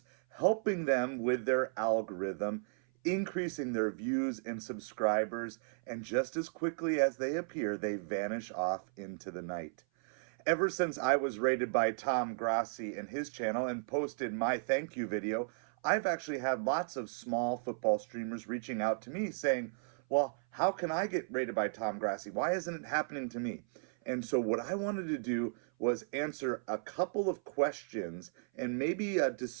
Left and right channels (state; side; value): silent; left; 55 dB below the other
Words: helping them with their algorithm, increasing their views and subscribers, and just as quickly as they appear, they vanish off into the night. Ever since I was rated by Tom Grossi in his channel and posted my thank you video, I've actually had lots of small football streamers reaching out to me saying, well, how can I get rated by Tom Grossi? Why isn't it happening to me? And so what I wanted to do was answer a couple of questions and maybe